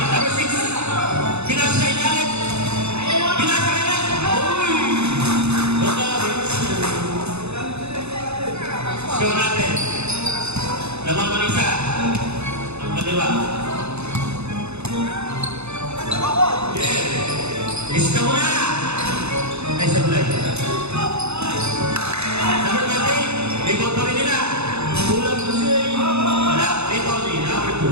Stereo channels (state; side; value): late; left; 0.80 ms